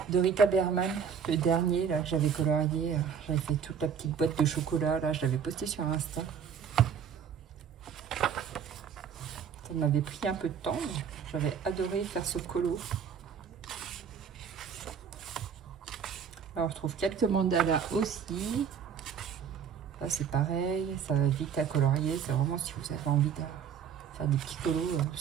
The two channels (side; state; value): left; quieter; 7.3 dB